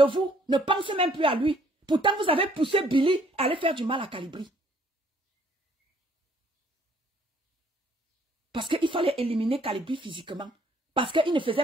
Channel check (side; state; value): both; normal; correlation 0.63